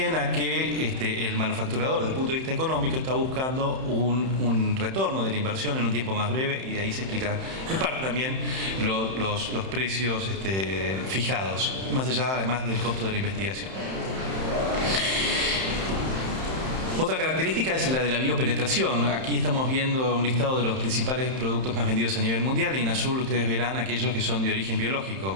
a que el manufacturador, desde el punto de vista económico, está buscando un retorno de la inversión en un tiempo más breve, y de ahí se explica en parte también los precios fijados, más allá además del costo de la investigación. Otra característica es la de la biopenetración. Aquí estamos viendo un listado de los principales productos más vendidos a nivel mundial, y en azul ustedes verán aquellos que son de origen biológico.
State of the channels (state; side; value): late; left; 31 ms